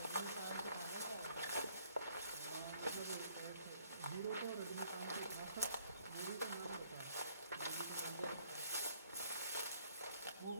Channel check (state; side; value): inverted; both; correlation -0.63